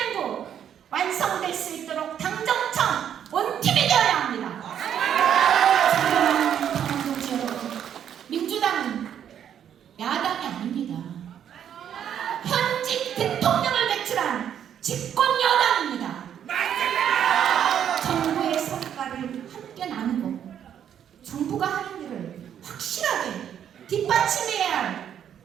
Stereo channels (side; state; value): left; quieter; 9.3 dB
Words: 완성된 선거일 수 있도록 당정청 원팀이 되어야 합니다. 당원동지 여러분, 민주당은 야당이 아닙니다. 현직 대통령을 배출한 집권 여당입니다. 정부의 성과를 함께 나누고 정부가 하는 일을 확실하게 뒷받침해야 할